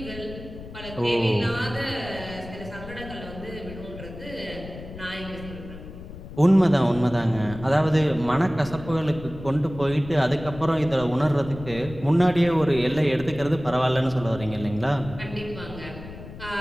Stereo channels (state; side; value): noise; left; rumble, 13 dB below the sound